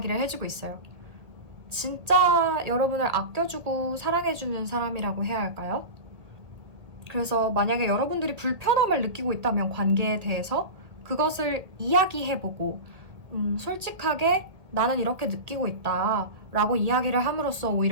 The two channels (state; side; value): late; left; 1.8 ms